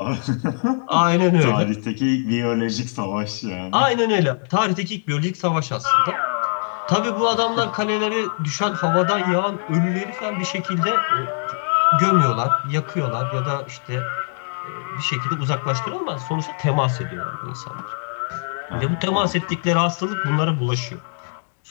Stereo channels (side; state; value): right; silent; digital silence